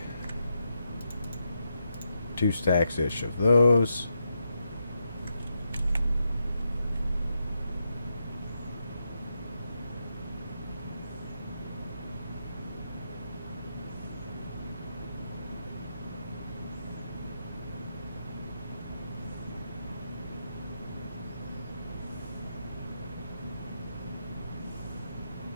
2 stacks-ish of those.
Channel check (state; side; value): inverted; both; correlation -0.83